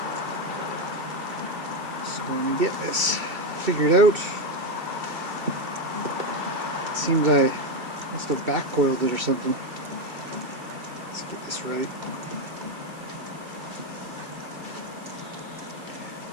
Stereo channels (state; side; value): late; left; 2.6 ms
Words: So going to get this figured out. It seems I must have back coiled it or something. Let's get this right.